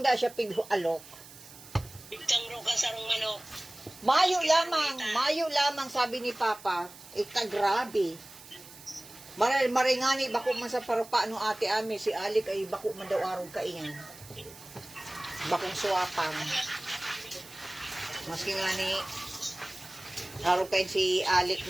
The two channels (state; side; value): noise; right; hiss, 19 dB below the sound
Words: siya alok. Bigtang ro ka sarong manok. Mayo lamang, sabi ni Papa, ika grabe. Maringani, bako man sa parupa no ate ami, si Alik ay bako man daw araw kaingan. Bakong suwapang. Maski nga ni, araw kain si Alik